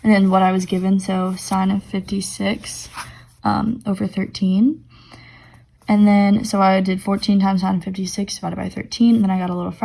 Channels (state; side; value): identical; both; correlation 1.00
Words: then what I was given, so sine of 56 over 13. And then, so I did 14 times sine of 56 divided by 13, and then I got a little